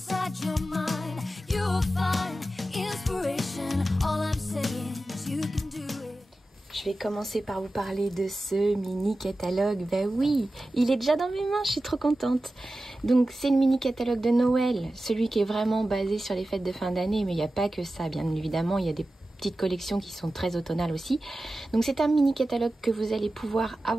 your mind. You'll find inspiration. All I'm saying is you can do it. Je vais commencer par vous parler de ce mini catalogue. Ben oui, il est déjà dans mes mains, je suis trop contente. Donc c'est le mini catalogue de Noël, celui qui est vraiment basé sur les fêtes de fin d'année, mais il n'y a pas que ça, bien évidemment, il y a des petites collections qui sont très automnales aussi. Donc c'est un mini catalogue que vous allez pouvoir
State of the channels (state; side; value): normal; both; correlation 0.94